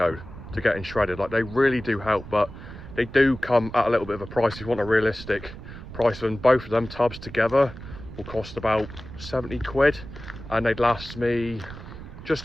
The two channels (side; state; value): right; noise; rumble, 13 dB below the sound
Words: to getting shredded. Like, they really do help, but they do come at a little bit of a price. If you want a realistic price, and both of them tubs together will cost about 70 quid, and they'd last me just